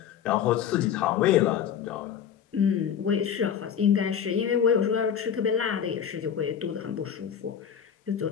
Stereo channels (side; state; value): right; quieter; 8.5 dB